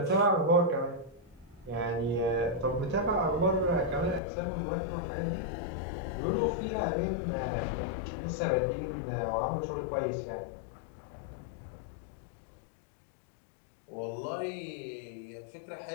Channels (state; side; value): drops out; right; at 4.2 s